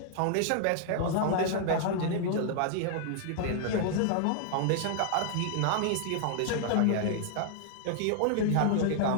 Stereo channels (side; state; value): both; different; correlation -0.01